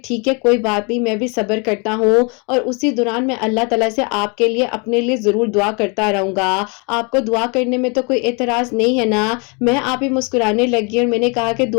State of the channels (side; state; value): right; quieter; 32.7 dB